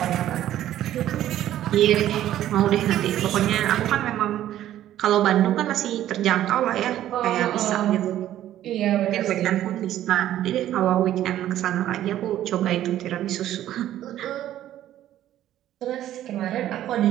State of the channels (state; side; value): quieter; left; 12.5 dB